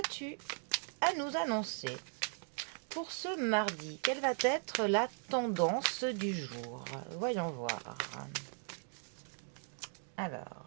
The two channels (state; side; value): silent; left; 52 dB below the other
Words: à nous annoncer pour ce mardi? Quelle va être la tendance du jour? Voyons voir.